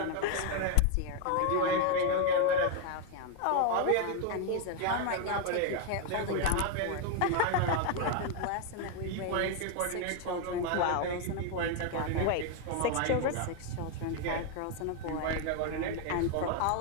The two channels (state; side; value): different; both; correlation 0.01